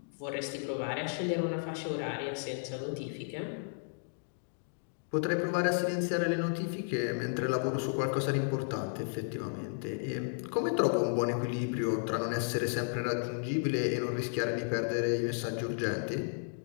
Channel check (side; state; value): right; silent; digital silence